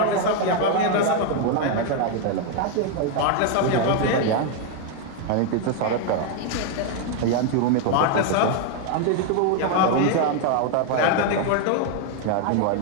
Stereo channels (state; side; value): different; both; correlation 0.01